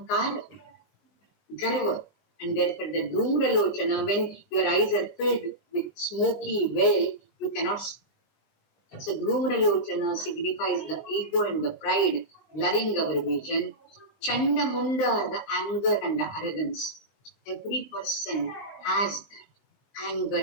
garva. And therefore the Dhumralochana, when your eyes are filled with smoky veil, you cannot see. So Dhumralochana signifies the ego and the pride, blurring our vision. Chandamunda are the anger and the arrogance. Every person has that anger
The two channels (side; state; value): right; late; 19 ms